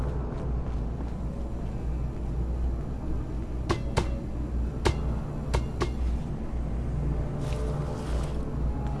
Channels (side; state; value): both; identical; correlation 1.00